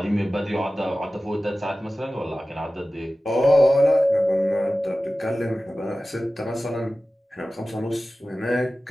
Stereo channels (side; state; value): both; normal; correlation 0.96